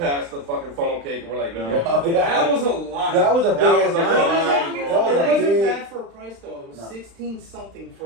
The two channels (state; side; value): late; left; 35 ms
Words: the fucking funnel cake, and we're like, no. That was a lot. That was a big. That was a ass lot. line, It bro. wasn't big- bad for a price though. It was No. 16 something for.